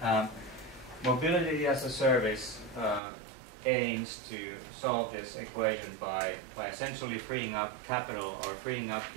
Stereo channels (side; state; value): left; drops out; at 3.0 s